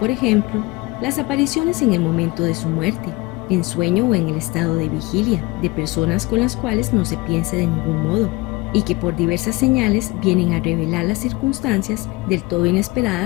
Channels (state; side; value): quieter; right; 22.7 dB